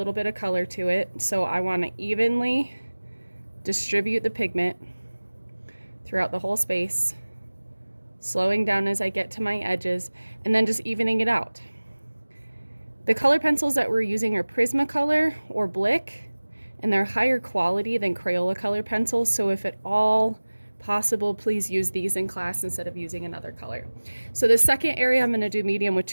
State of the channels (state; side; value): inverted; both; correlation -1.00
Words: bit of color to it. So I want to evenly distribute the pigment throughout the whole space, slowing down as I get to my edges, and then just evening it out. The color pencils that we're using are Prismacolor or Blick, and they're higher quality than Crayola color pencils. So if at all possible, please use these in class instead of using another color. So the second area, I'm going to do medium with